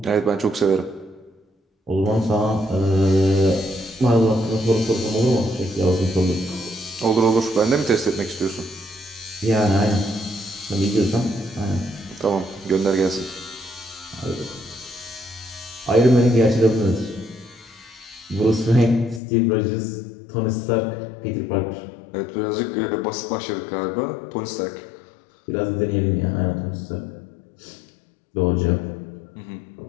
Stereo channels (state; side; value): drops out; right; at 19.2 s